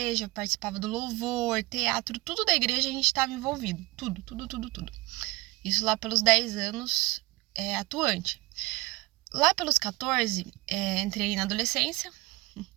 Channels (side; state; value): left; quieter; 22.3 dB